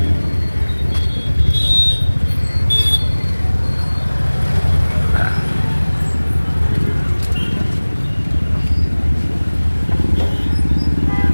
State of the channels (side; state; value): both; inverted; correlation -1.00